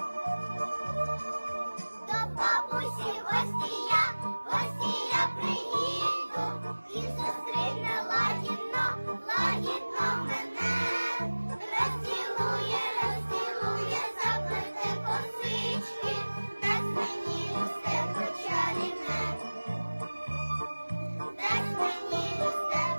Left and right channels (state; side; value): inverted; both; correlation -1.00